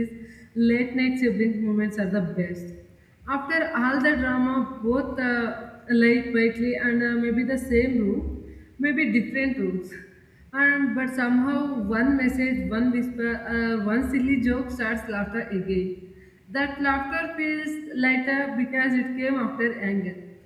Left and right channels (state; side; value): identical; both; correlation 1.00